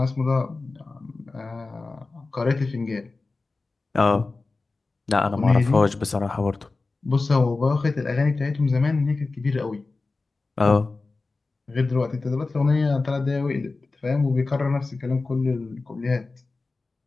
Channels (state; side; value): quieter; right; 3.7 dB